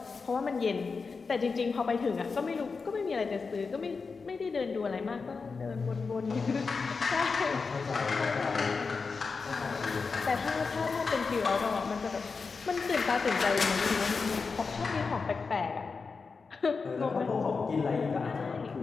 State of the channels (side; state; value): right; quieter; 4.7 dB